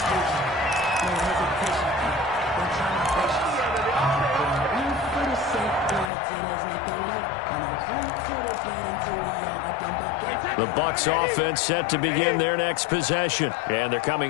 The Bucs offense set to begin their next possession. And they're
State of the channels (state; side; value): drops out; right; at 6.1 s